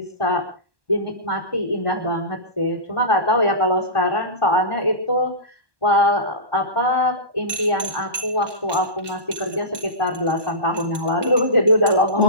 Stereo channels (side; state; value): left; late; 1.2 ms